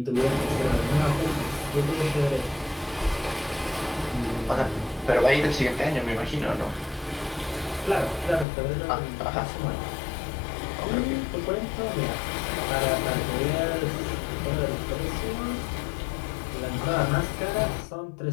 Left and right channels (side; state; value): right; drops out; at 8.5 s